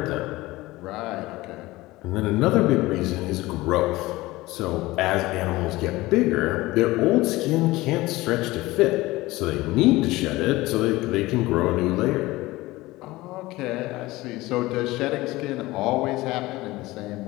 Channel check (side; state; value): right; quieter; 19.3 dB